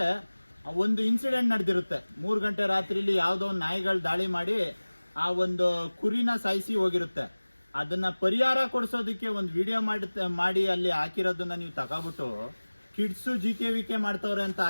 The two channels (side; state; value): both; inverted; correlation -1.00